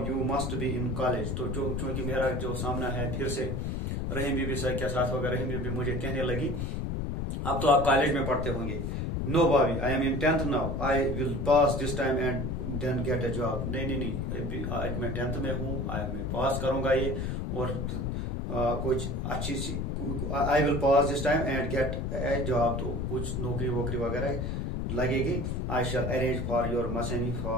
you must be in college. तो जो चूंकि मेरा जो सामना है फिर से रहीम बीबी सर के साथ होगा, रहीम बीबी मुझे कहने लगी अब तो आप कॉलेज में पढ़ते होंगे. नो भाभी, I am in 10th now, I will pass this time and then get a job. नहीं आज मैं 10th में हूँ, मैं पास करूंगा ये और कुछ अच्छी सी, I will pass this time and get a job, तो कुछ नौकरी वोकरी वगैरह लगेगी. I shall arrange for your मशानी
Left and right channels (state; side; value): noise; left; rumble, 1 dB below the sound